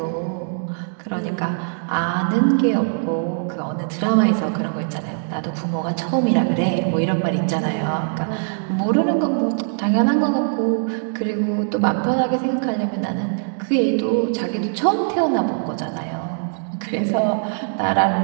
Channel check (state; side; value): silent; left; digital silence